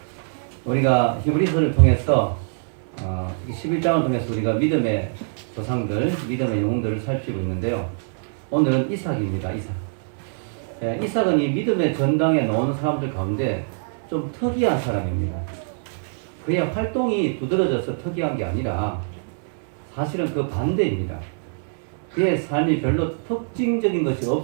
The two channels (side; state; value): left; silent; 63 dB below the other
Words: 우리가 히브리서를 통해서 11장을 통해서 우리가 믿음의 조상들, 믿음의 영웅들을 살피고 있는데요. 오늘은 이삭입니다. 이삭. 이삭은 이 믿음의 전당에 나오는 사람들 가운데 좀 특이한 사람입니다. 그의 활동이 두드러져서 특이한 게 아니라 사실은 그 반대입니다. 그의 삶이 별로 특징적인 것이